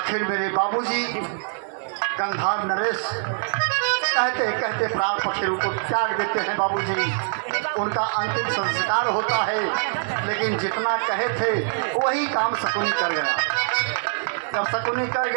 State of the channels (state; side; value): silent; left; 63 dB below the other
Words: मेरे बाबूजी गंधार नरेश कहते कहते प्राण पक्षी को त्याग देते हैं। बाबूजी उनका अंतिम संस्कार होता है लेकिन जितना कहे थे वही काम शकुनी कर गया। जब शकुनी कर